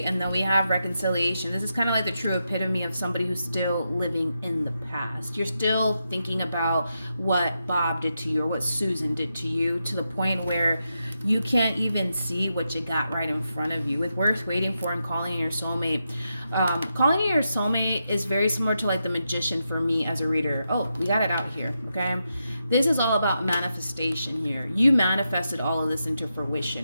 and then we have reconciliation. This is kind of like the true epitome of somebody who's still living in the past. You're still thinking about what Bob did to you or what Susan did to you, to the point where you can't even see what you got right in front of you. With worth waiting for and calling in your soulmate. Calling in your soulmate is very similar to like the magician for me as a reader. Oh, we got it out here, okay? This is all about manifestation here. You manifested all of this into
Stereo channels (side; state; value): both; inverted; correlation -0.86